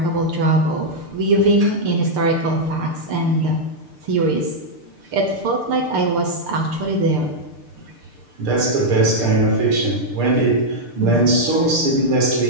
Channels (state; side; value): late; left; 6.7 ms